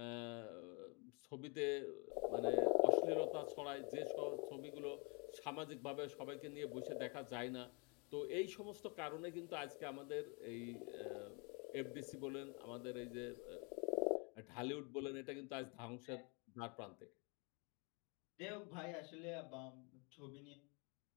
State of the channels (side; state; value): right; quieter; 32.8 dB